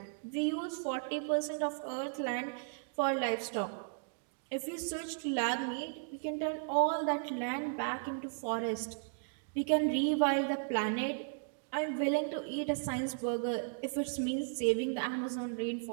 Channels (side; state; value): left; silent; digital silence